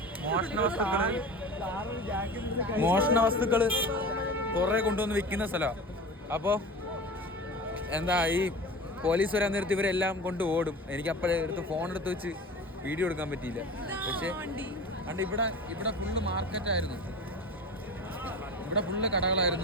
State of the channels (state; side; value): normal; both; correlation 0.34